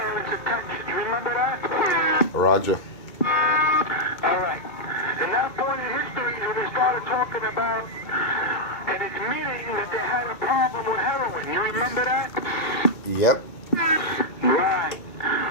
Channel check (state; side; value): late; right; 2.2 ms